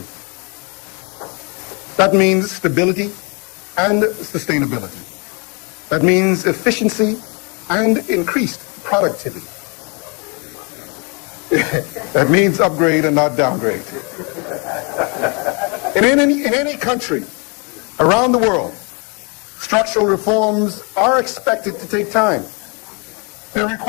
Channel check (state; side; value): quieter; right; 33.1 dB